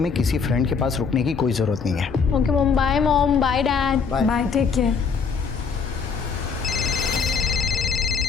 किसी फ्रेंड के पास रुकने की कोई जरूरत नहीं है। Okay mom, bye mom, bye dad. Bye, take care.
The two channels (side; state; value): right; quieter; 5.7 dB